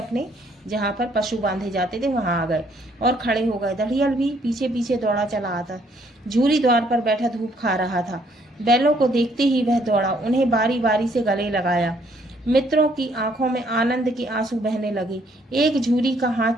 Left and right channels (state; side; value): normal; both; correlation 0.67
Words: जहाँ पर पशु बांधे जाते थे वहां आ गए और खड़े हो गए। दढ़ियल भी पीछे पीछे दौड़ा चला आता। झूरी द्वार पर बैठा धूप खा रहा था। बैलों को देखते ही वह दौड़ा, उन्हें बारी बारी से गले लगाया। मित्रों की आंखों में आनंद के आंसू बहने लगे। एक झूरी का हाथ